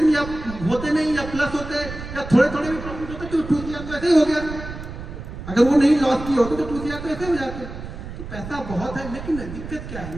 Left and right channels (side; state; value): right; noise; rumble, 10 dB below the sound